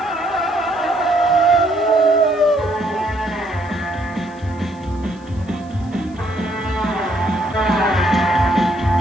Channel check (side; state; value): left; noise; hiss, 28 dB below the sound